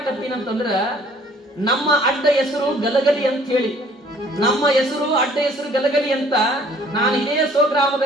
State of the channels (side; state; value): both; normal; correlation 0.57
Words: ನಮ್ಮ ಅಡ್ಡ ಹೆಸರು ಗಲಗಲಿ ಅಂತ ಹೇಳಿ, ನಮ್ಮ ಹೆಸರು ಅಡ್ಡ ಹೆಸರು ಗಲಗಲಿ ಅಂತ. ನಾನು ಇದೇ